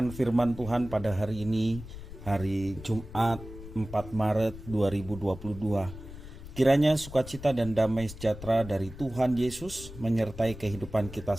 firman Tuhan pada hari ini, hari Jumat 4 Maret 2022. Kiranya sukacita dan damai sejahtera dari Tuhan Yesus menyertai kehidupan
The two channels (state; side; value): noise; left; rumble, 13 dB below the sound